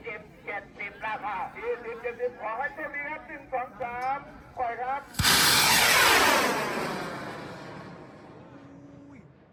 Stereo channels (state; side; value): identical; both; correlation 1.00